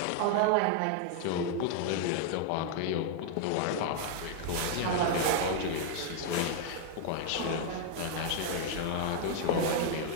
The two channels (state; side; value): different; both; correlation 0.00